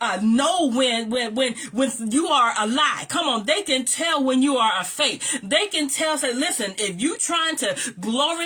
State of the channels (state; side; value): identical; both; correlation 1.00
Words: know when you are a lie. Come on. They can tell when you are a fake. They can tell, say, listen, if you trying to